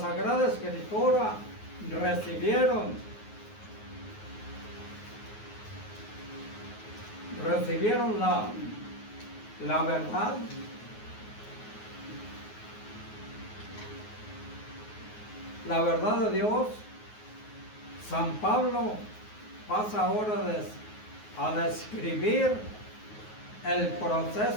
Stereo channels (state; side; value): late; right; 9.5 ms